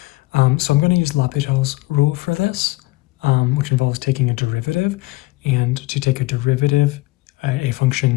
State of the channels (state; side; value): quieter; right; 20.8 dB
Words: So I'm going to use L'Hopital's rule for this, which involves taking a derivative. And to take a derivative, a